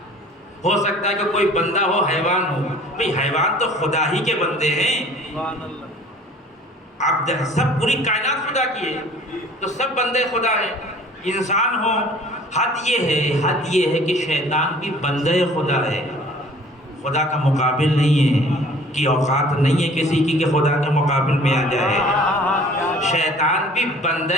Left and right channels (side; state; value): both; normal; correlation 0.50